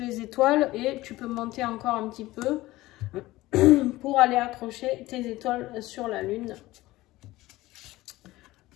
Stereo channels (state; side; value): quieter; right; 18.0 dB